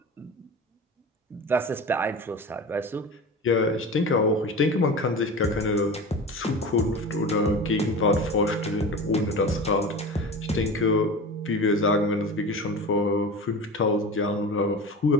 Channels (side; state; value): both; normal; correlation 0.31